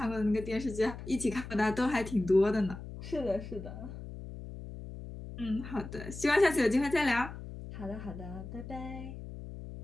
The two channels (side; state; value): left; noise; hum, 11 dB below the sound